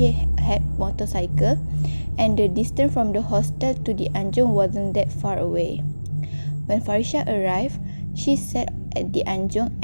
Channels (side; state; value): both; inverted; correlation -1.00